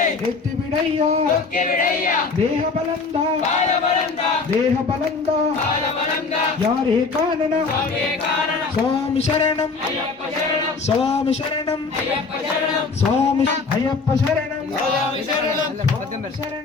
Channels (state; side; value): quieter; right; 4.3 dB